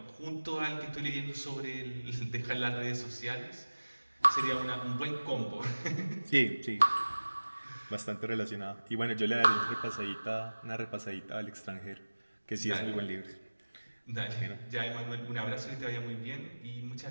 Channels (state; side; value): inverted; both; correlation -1.00